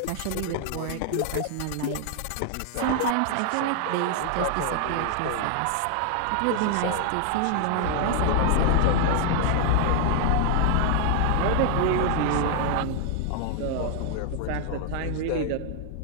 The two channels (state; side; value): different; both; correlation 0.00